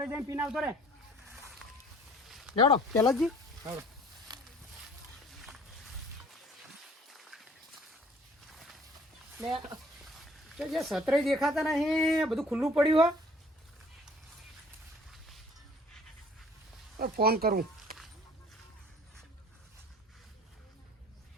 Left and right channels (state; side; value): normal; both; correlation 0.53